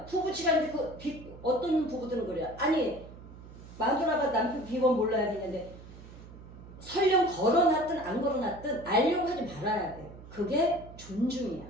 부부지간인데 어떤 부부들은 그래요. 아니 마누라가 남편 비번 몰라야 되는데 설령 걸어놨든 안 걸어놨든 알려고 하지 말아야 돼. 그게 존중이야.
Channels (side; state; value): right; noise; hum, 17 dB below the sound